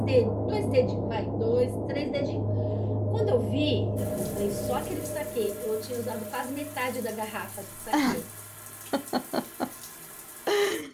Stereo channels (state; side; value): identical; both; correlation 1.00